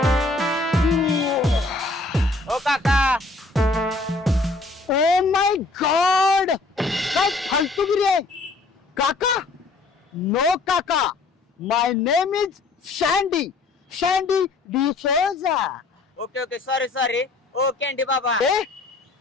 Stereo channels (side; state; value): right; quieter; 3.5 dB